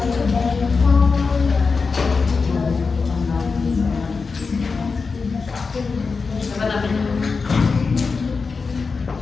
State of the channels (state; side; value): quieter; right; 4.7 dB